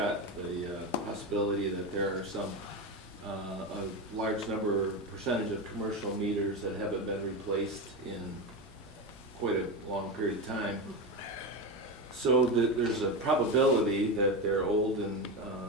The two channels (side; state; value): both; normal; correlation 0.17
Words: the possibility that there are a large percentage of commercial meters that haven't been replaced in quite a long period of time. So there's a probability that they're old and